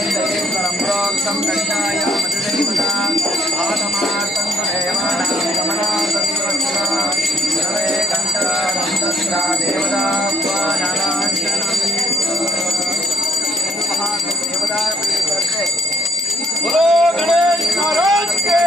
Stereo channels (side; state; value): both; normal; correlation 0.67